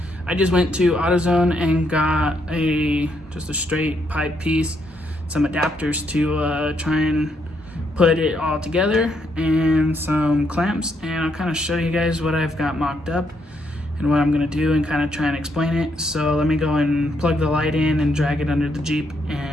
AutoZone and got just a straight pipe piece, some adapters to try and put it all together, and some clamps, and I'll kind of show you guys what I've got mocked up and what I'm going to do and kind of try and explain it. So let me go and plug the light in and drag it under the Jeep,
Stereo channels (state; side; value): normal; both; correlation 0.76